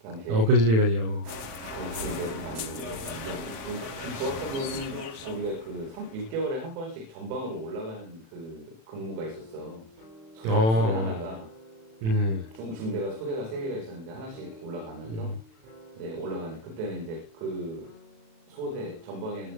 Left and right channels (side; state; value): left; late; 36 ms